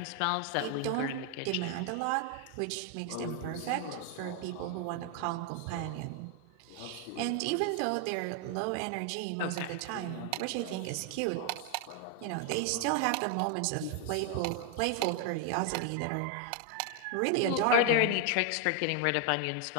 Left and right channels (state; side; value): different; both; correlation 0.00